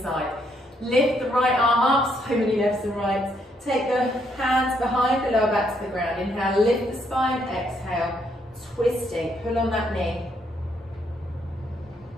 Lift the right arm up, so many lefts and rights. Take the hands behind the lower back to the ground. Inhale, lift the spine. Exhale, twisting. Pull on that knee.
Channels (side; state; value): both; normal; correlation 0.73